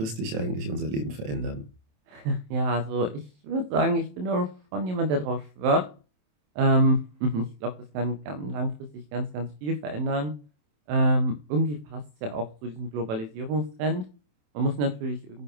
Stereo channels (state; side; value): late; left; 27 ms